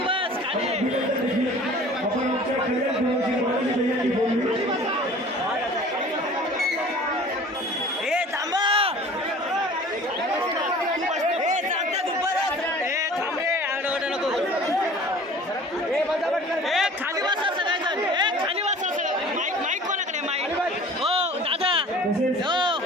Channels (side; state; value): both; normal; correlation 0.45